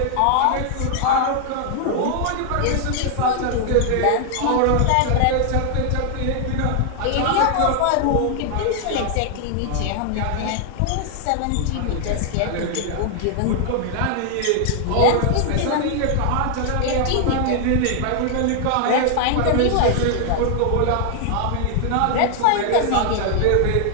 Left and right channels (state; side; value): different; both; correlation 0.00